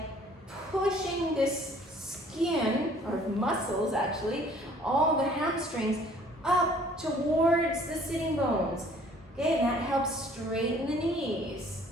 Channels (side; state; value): both; normal; correlation 0.56